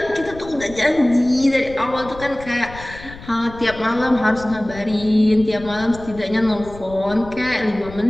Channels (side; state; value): left; noise; rumble, 16 dB below the sound